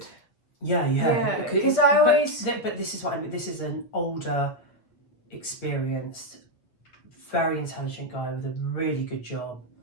Yeah. Yeah, because I always... But this is what I mean, this is an older, experienced, very intelligent guy with a really good job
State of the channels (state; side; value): late; right; 8.2 ms